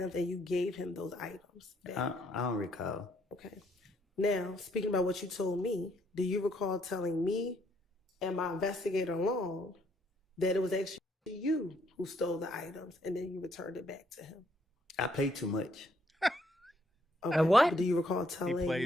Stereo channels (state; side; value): normal; both; correlation 0.69